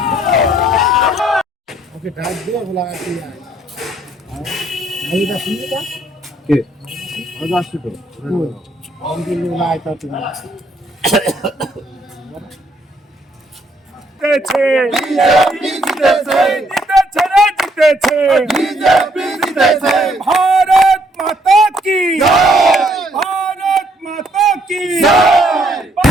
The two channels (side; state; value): both; normal; correlation 0.69